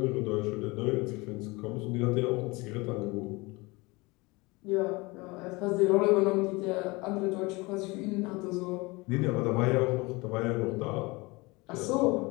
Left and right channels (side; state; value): right; quieter; 24.3 dB